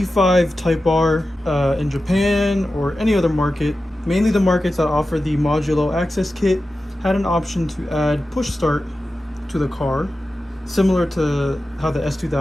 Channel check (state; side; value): normal; both; correlation 0.93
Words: Type R in Japan or any other market, mainly the markets that offer the modulo access kit, had an option to add push start to the car, similar to how the